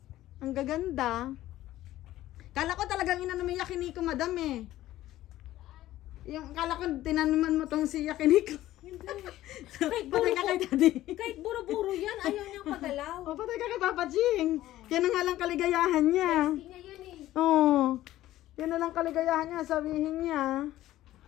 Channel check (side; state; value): right; quieter; 14.7 dB